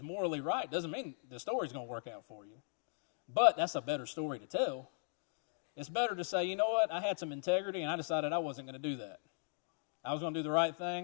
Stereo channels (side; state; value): right; silent; digital silence